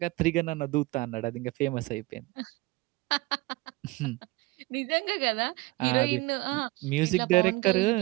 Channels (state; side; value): quieter; left; 22.0 dB